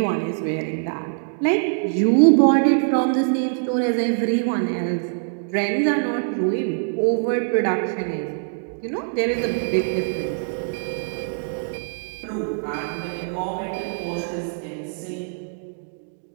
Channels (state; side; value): silent; left; digital silence